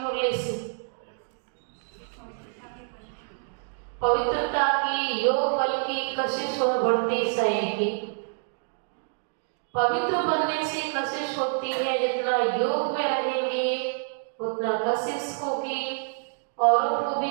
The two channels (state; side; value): silent; left; digital silence